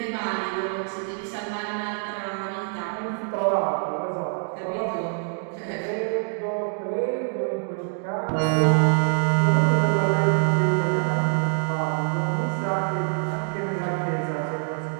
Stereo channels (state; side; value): silent; left; 56 dB below the other